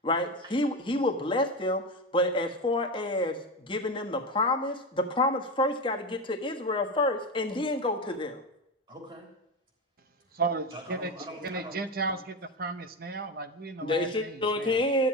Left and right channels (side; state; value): both; normal; correlation 0.18